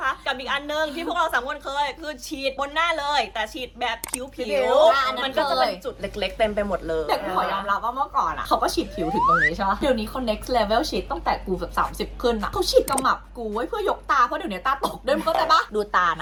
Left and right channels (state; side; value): identical; both; correlation 1.00